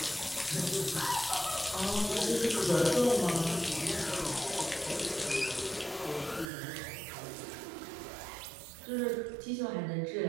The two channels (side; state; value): left; drops out; at 6.5 s